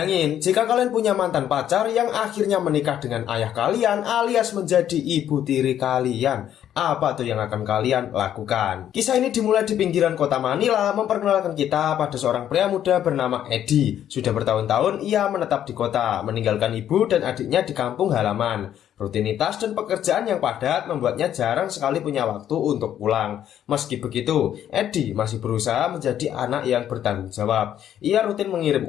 jika kalian punya mantan pacar yang akhirnya menikah dengan ayah kalian alias menjadi ibu tiri kalian. Apa tuh yang akan kalian lakukan? Kisah ini dimulai di pinggiran kota Manila, memperkenalkan kita pada seorang pria muda bernama Eddie. Sudah bertahun-tahun ia menetap di kota, meninggalkan ibu dan adiknya di kampung halaman. Rutinitas dan pekerjaan yang padat membuatnya jarang sekali punya waktu untuk pulang. Meski begitu, Eddie masih berusaha menjadi anak yang bertanggung jawab. Ia rutin mengirim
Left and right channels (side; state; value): right; quieter; 10.6 dB